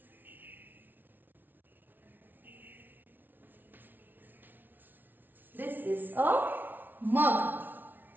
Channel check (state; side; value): late; left; 0.090 ms